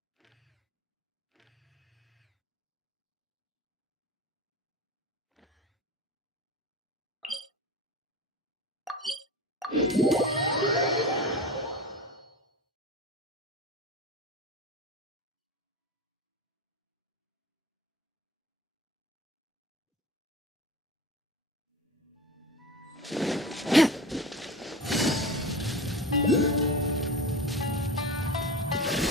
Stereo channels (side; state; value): both; normal; correlation 0.31